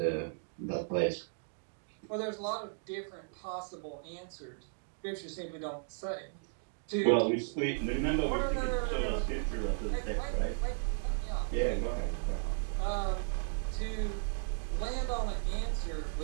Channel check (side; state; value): left; silent; digital silence